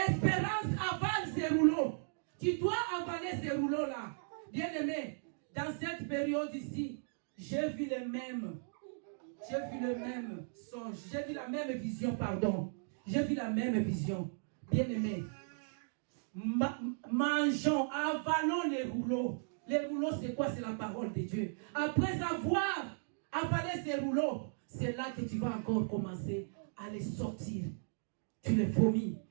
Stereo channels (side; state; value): left; silent; digital silence